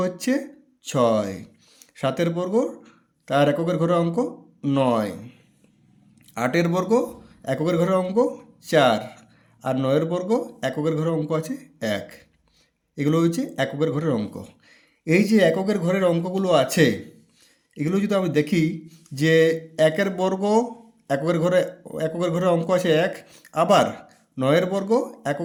হচ্ছে 6, 7-এর বর্গ তার এককের ঘরের অঙ্ক 9, 8-এর বর্গ এককের ঘরের অঙ্ক 4, আর 9-এর বর্গ এককের ঘরের অঙ্ক আছে 1। এগুলো হচ্ছে এককের ঘরের অঙ্ক। এই যে এককের ঘরের অঙ্কগুলো আছে, এগুলো যদি আমি দেখি যে একের বর্গ এককের ঘরে অঙ্ক আছে 1, আবার 9-এর বর্গ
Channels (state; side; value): identical; both; correlation 1.00